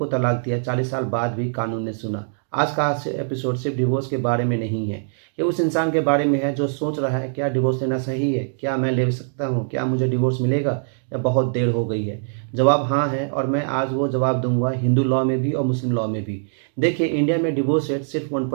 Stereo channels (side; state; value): left; silent; digital silence